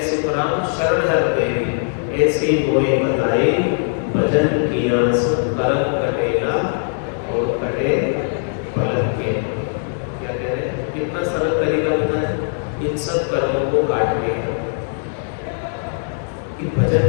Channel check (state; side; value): silent; right; digital silence